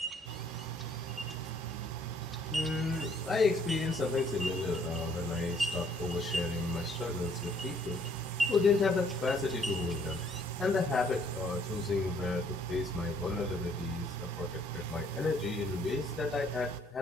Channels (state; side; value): normal; both; correlation 0.63